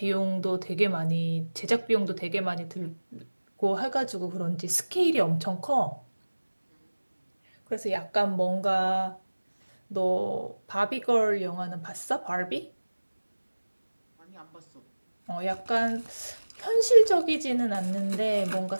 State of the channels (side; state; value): both; inverted; correlation -1.00